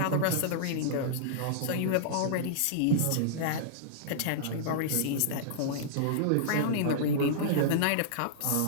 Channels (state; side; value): different; both; correlation -0.02